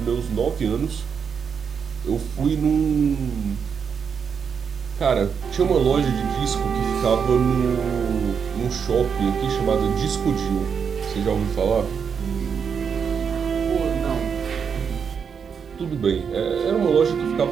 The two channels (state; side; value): quieter; left; 6.7 dB